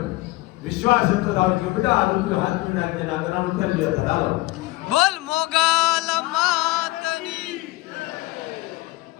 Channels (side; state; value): right; quieter; 20.2 dB